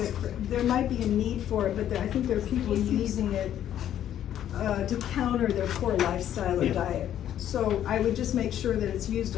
there might be a need for it, but I think there are people using it to counter their poor lifestyle or Yeah. diet. So I would just make sure that it's used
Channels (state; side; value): quieter; right; 10.9 dB